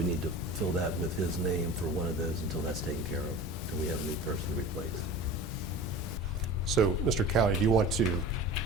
need to fill that with his name for one of those until that's taken care of, until we have a new person to replace. So, Mr. Cowley, do you want to,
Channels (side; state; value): both; normal; correlation 0.36